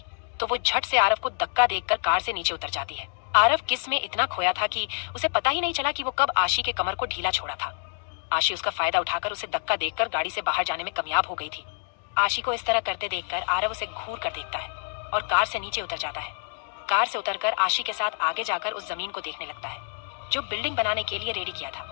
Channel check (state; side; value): silent; right; digital silence